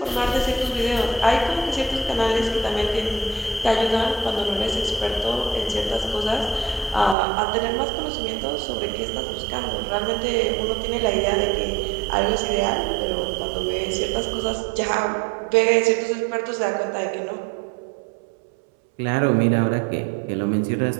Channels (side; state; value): left; drops out; at 7.2 s